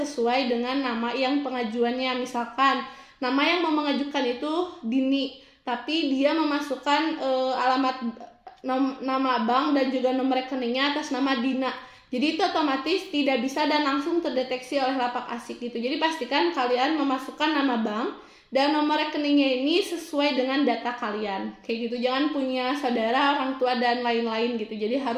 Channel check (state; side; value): identical; both; correlation 1.00